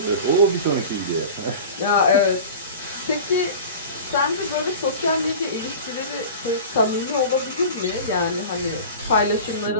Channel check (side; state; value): both; inverted; correlation -0.35